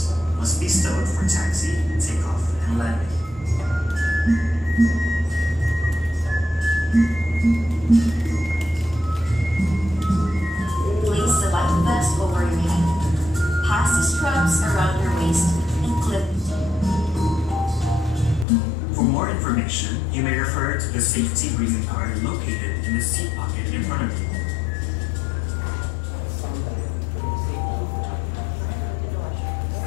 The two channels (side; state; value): right; drops out; at 18.4 s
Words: must be stowed for taxi, takeoff, and landing. Place the life vest over your head. Pass the straps around your waist and clip. For more information, you may refer to the safety briefing card located in the seat pocket in front of you.